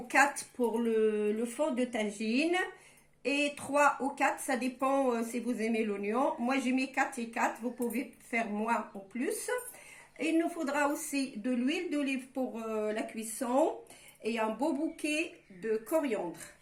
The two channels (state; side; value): identical; both; correlation 1.00